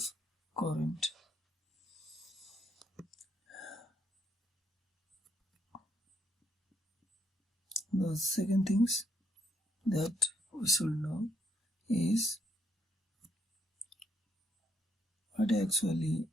current. The second things that we should know is what actually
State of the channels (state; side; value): normal; both; correlation 0.75